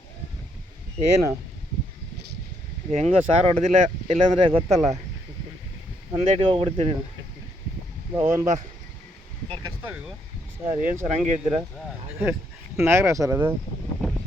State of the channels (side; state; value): both; normal; correlation 0.73